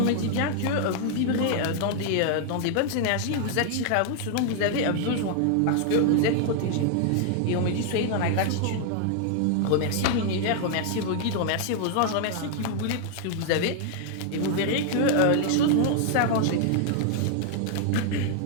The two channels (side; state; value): both; different; correlation 0.00